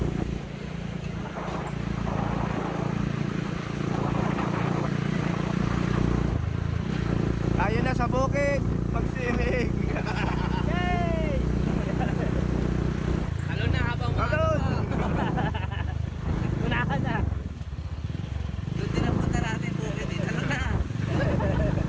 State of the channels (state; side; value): identical; both; correlation 1.00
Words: Ayun na sa bukid, pagsinig. Yay! Talon na habang Talon! unahan na. Doon din ang punta natin bukid eh. Talon na.